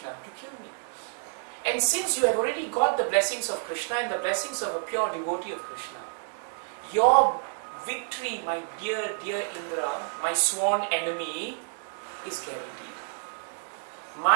to kill me. And since you have already got the blessings of Krishna and the blessings of a pure devotee of Krishna, your victory, my dear, dear Indra, my sworn enemy, is guaranteed.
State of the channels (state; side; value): silent; left; 59 dB below the other